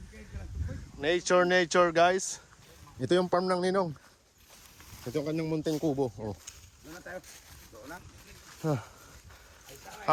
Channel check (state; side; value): identical; both; correlation 1.00